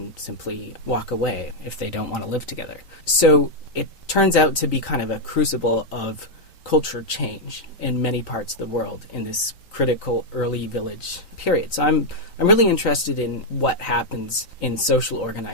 simply walk away if they don't want to live together. So it turns out to be kind of a crucible of culture change in many parts of the world in this critical early village period. So I'm really interested in what happens in social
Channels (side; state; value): right; late; 3.9 ms